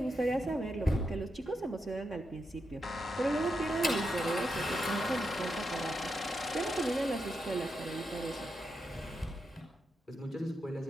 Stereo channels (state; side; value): normal; both; correlation 0.85